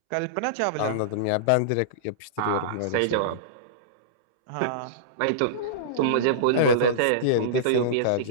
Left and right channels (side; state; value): both; different; correlation -0.04